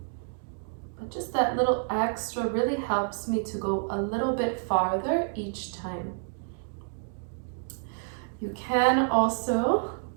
But just that little extra really helps me to go a little bit farther each time. You can also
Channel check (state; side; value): silent; left; digital silence